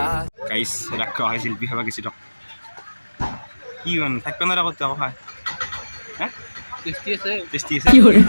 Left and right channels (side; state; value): both; inverted; correlation -1.00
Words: গাইজ ৰাখা হয় শিল্পী খাবা গেছি দিয়ক কি মানে থাকিব নোৱাৰা ক'ত আকৌ খাই হে টেষ্টি আছে টেষ্টি আছে